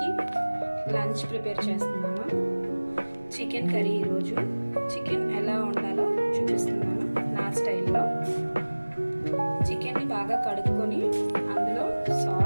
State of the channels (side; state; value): both; inverted; correlation -1.00